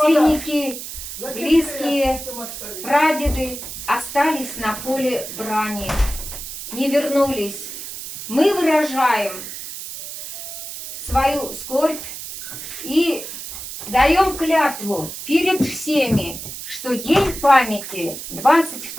близкие, прадеды остались на поле брани, не вернулись. Мы выражаем свою скорбь и даем клятву перед всеми, что День памяти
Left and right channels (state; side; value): noise; right; hiss, 9 dB below the sound